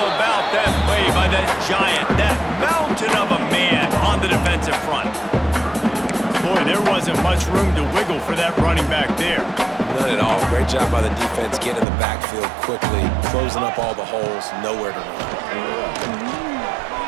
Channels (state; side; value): drops out; left; at 11.9 s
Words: about that play by that giant, that mountain of a man on the defensive front? Boy, there wasn't much room to wiggle for that running back there. None at all. Great job by the defense getting in the backfield quickly, closing up all the holes, nowhere to run.